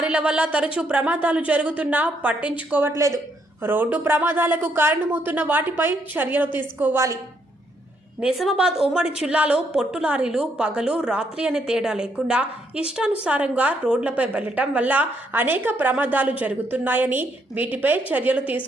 వల్ల తరచూ ప్రమాదాలు జరుగుతున్నా పట్టించుకోవట్లేదు. రోడ్డు ప్రమాదాలకు కారణమవుతున్న వాటిపై చర్యలు తీసుకోవాలి. నిజామాబాద్ ఉమ్మడి జిల్లాలో పొట్టు లారీలు పగలు రాత్రి అనే తేడా లేకుండా ఇష్టానుసారంగా రోడ్లపై వెళ్లటం వల్ల అనేక ప్రమాదాలు జరుగుతున్నాయని, వీటిపై చర్యలు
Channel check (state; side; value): normal; both; correlation 0.73